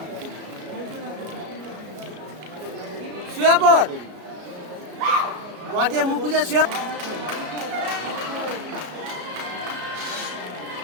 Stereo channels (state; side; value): late; left; 33 ms